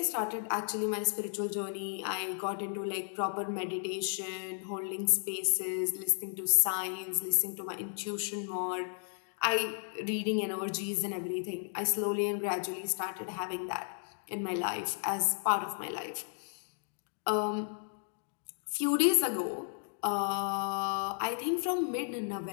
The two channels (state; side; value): silent; right; digital silence